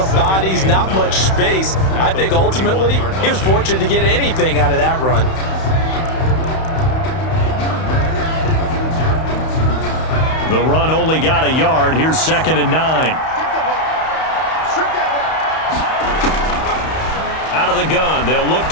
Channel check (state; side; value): late; right; 31 ms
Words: bodies, not much space. I think ultimately he was fortunate to get anything out of that run. The run only got a yard. Here's 2nd and 9. Out of the gun. They'll look